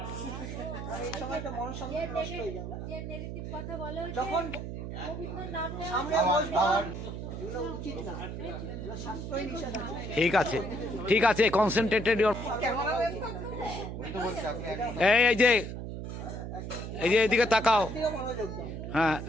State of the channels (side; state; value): right; noise; hum, 7 dB below the sound